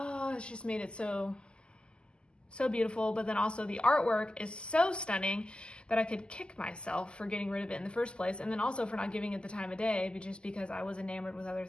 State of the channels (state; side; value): late; right; 0.049 ms